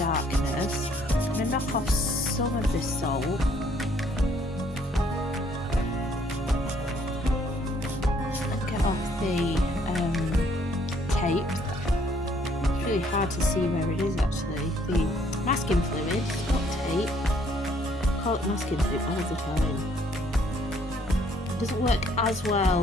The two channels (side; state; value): both; normal; correlation 0.64